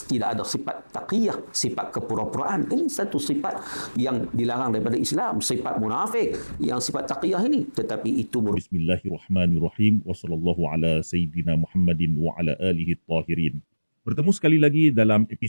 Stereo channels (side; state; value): both; inverted; correlation -1.00